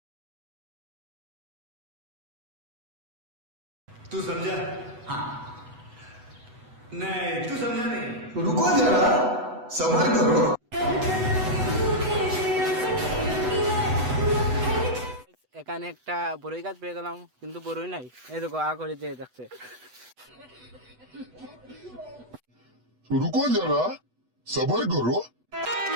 तू समझा? हाँ। नहीं, तू समझा नहीं। रुको जरा सबर करो। এখানে একটা বড়ই গাছ পেয়ে গেলাম, কিন্তু বড়ই নাই। এই দেখো আ করে যে দেখছে। रुको जरा सबर करो।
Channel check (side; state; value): left; late; 8.0 ms